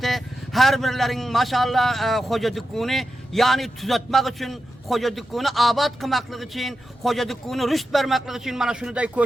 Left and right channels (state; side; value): normal; both; correlation 0.90